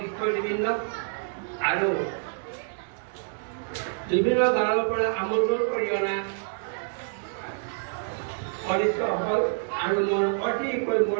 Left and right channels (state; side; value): silent; left; digital silence